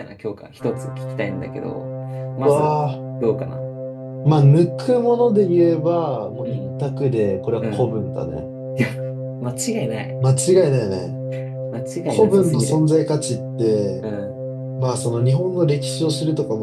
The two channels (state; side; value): identical; both; correlation 1.00